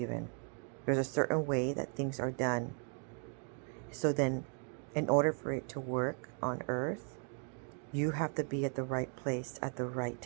There's a certain way that things are done. So then, in order for it to work on earth, you have to be at the right place at the right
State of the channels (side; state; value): left; quieter; 39.3 dB